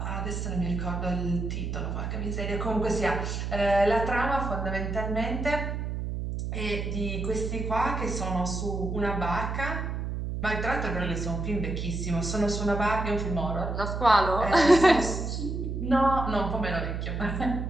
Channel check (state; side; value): noise; right; hum, 3 dB below the sound